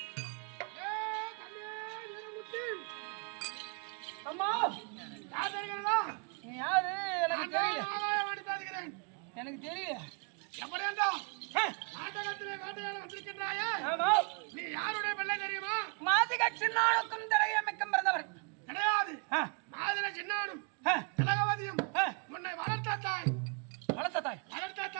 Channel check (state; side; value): quieter; left; 36.2 dB